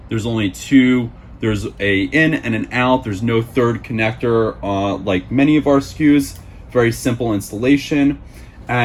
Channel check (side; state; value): both; identical; correlation 1.00